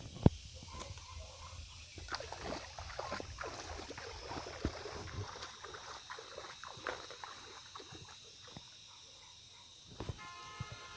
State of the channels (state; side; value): identical; both; correlation 1.00